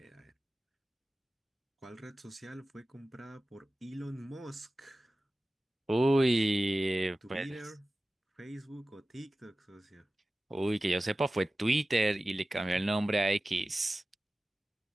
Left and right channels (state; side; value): normal; both; correlation 0.96